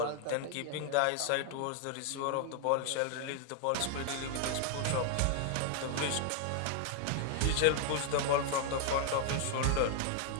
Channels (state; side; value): different; both; correlation 0.00